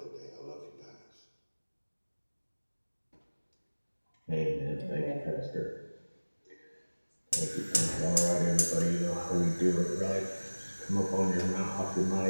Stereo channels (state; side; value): inverted; both; correlation -1.00